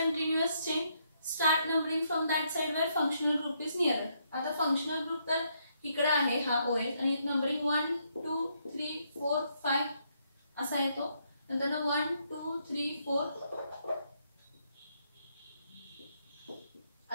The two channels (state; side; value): inverted; both; correlation -0.75